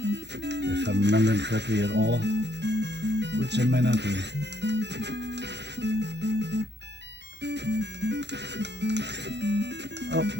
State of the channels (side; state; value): left; late; 0.50 ms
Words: If I'm remembering correctly at all, which I might not be. Oh,